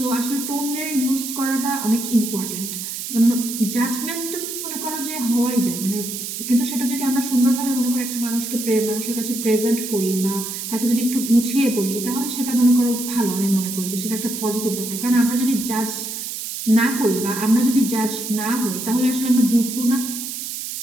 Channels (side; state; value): right; noise; hiss, 6 dB below the sound